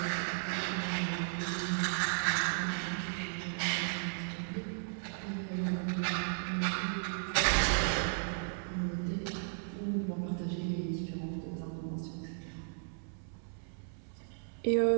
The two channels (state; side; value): silent; left; 54 dB below the other